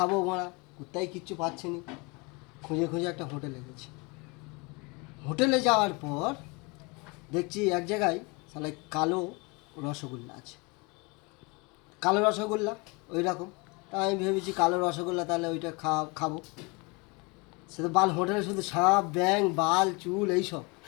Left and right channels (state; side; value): quieter; right; 27.7 dB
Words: মোড়া, কোথায় কিচ্ছু পাচ্ছি নি। খুঁজে খুঁজে একটা হোটেলে গেছি। হোটেলে যাওয়ার পর দেখছি এক জায়গায় তাহলে কালো রসগোল্লা আছে। কালো রসগোল্লা ওই রকম। তা আমি ভেবেছি কালো রসগোল্লা, তাহলে ওইটা খাবো। সে তো বাল হোটেলে শুধু সাপ ব্যাং বাল চুল এইসব।